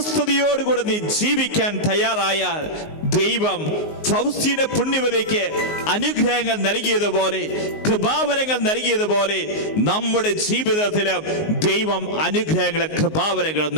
നീ ജീവിക്കാൻ തയ്യാറായാൽ ദൈവം ഫൗസ്റ്റീന പുണ്യവതിക്ക് അനുഗ്രഹങ്ങൾ നൽകിയതുപോലെ, കൃപാവരങ്ങൾ നൽകിയതുപോലെ നമ്മുടെ ജീവിതത്തിലും ദൈവം അനുഗ്രഹങ്ങളും കൃപാവരങ്ങളും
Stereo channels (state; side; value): late; right; 19 ms